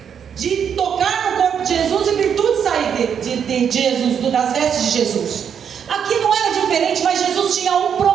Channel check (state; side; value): quieter; left; 7.8 dB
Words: de tocar no corpo de Jesus e virtude sair de Jesus, das vestes de Jesus. Aqui não era diferente, mas Jesus tinha um